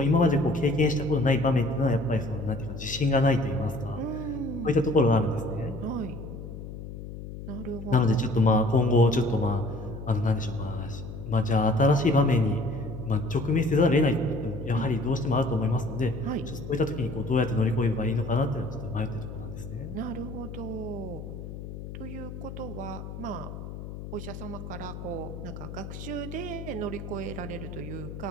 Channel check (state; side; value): noise; left; hum, 10 dB below the sound